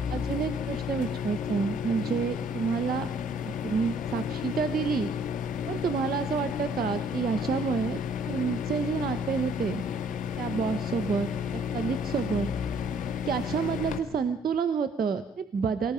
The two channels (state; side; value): normal; both; correlation 0.61